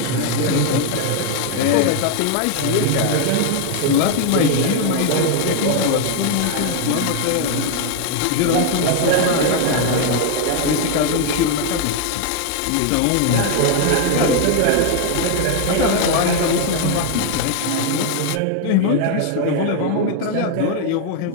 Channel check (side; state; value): both; different; correlation 0.00